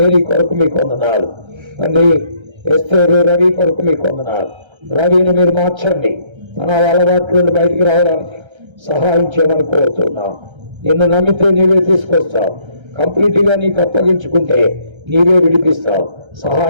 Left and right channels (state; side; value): late; left; 1.3 ms